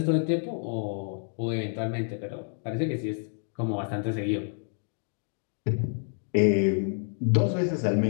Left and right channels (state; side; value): silent; right; digital silence